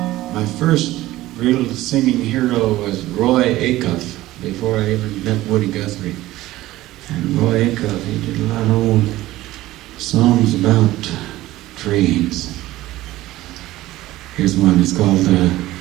first real singing hero was Roy Acuff, before I even met Woody Guthrie. And Roy Acuff, he did a lot of old songs about trains. Here's one, it's called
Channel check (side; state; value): left; quieter; 16.5 dB